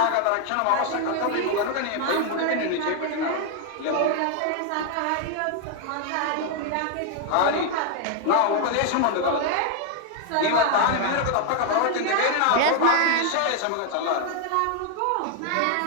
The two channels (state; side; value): different; both; correlation 0.00